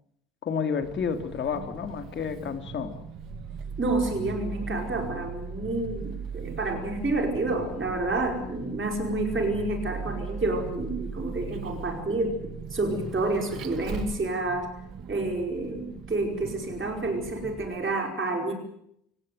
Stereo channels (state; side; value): normal; both; correlation 0.41